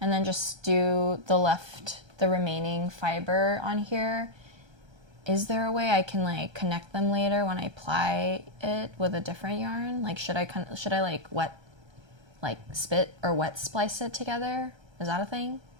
then just do the remaining fiber on here, is there a way I can like connect them later when I ply it with a different yarn? Like should I like spit or wet splice it together? Is that a thing?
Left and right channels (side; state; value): left; late; 1.3 ms